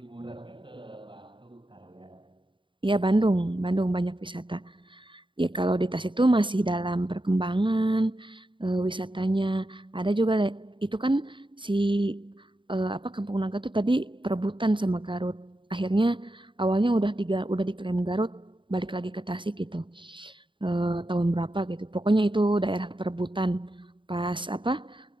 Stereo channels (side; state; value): left; late; 0.24 ms